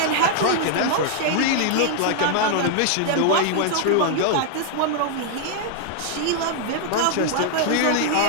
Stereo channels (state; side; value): different; both; correlation 0.00